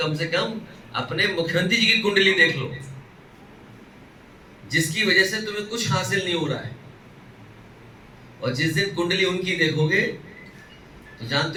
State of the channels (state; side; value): identical; both; correlation 1.00